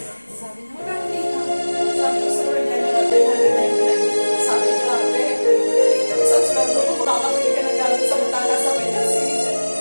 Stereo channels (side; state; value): both; inverted; correlation -1.00